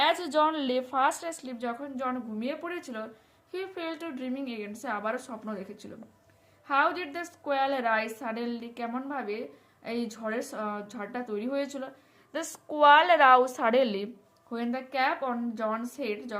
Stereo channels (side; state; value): both; identical; correlation 1.00